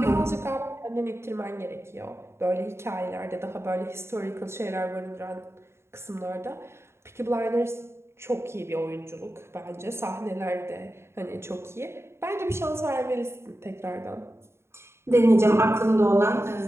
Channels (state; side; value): late; left; 0.12 ms